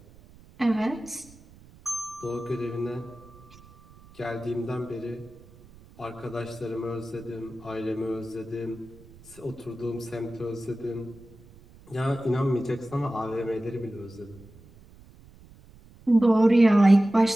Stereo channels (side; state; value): right; noise; rumble, 23 dB below the sound